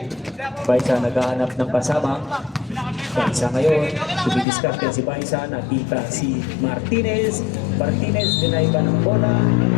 Baisa naghahanap ng pasabang. Baisa ngayon, dumidiskarte si Baisa. Nakita si Martinez. Martinez, dinay ba ng bola?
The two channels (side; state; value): right; drops out; at 4.5 s